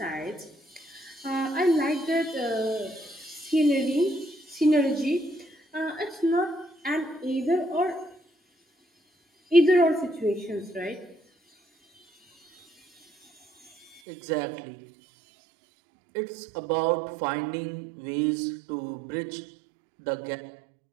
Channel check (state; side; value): drops out; left; at 14.0 s